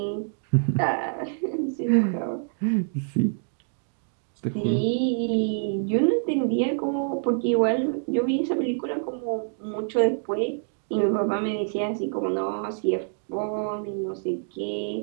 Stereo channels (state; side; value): silent; left; digital silence